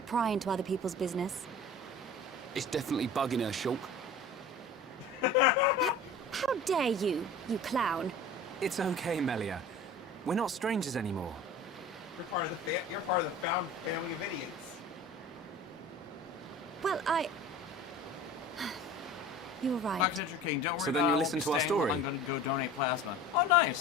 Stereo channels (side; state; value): both; normal; correlation 0.39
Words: pry into other people's business. It's definitely bugging her, Shulk. How dare you, you clown? It's okay, Melia. We're not strangers anymore. You're part of the found family of idiots. Well, You were right. Foxcatcher King, don't worry So then about it. you I won't listen be to our staying. story? I'm gonna go donate plasma. Oh,